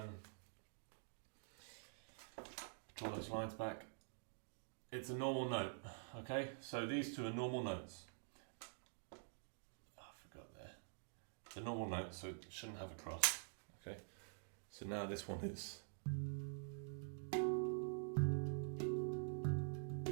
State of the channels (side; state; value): left; silent; digital silence